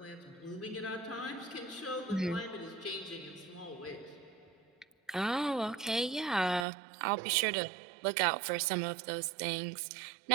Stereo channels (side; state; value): left; drops out; at 6.7 s